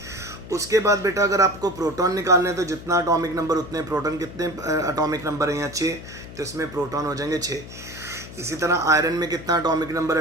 उसके बाद बेटा अगर आपको प्रोटॉन निकालने हैं तो जितना एटॉमिक नंबर उतने प्रोटॉन। कितने एटॉमिक नंबर है यहाँ, 6, तो इसमें प्रोटॉन हो जाएंगे 6। इसी तरह आयरन में कितना एटॉमिक नंबर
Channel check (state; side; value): noise; left; hum, 14 dB below the sound